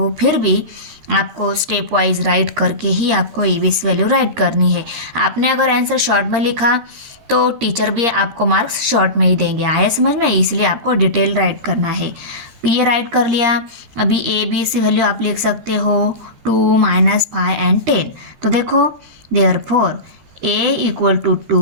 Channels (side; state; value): left; late; 13 ms